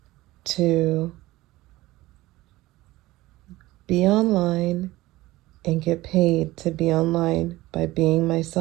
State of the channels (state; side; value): quieter; left; 18.1 dB